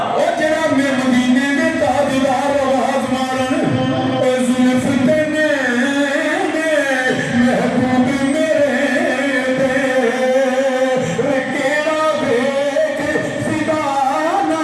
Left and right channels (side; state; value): both; identical; correlation 1.00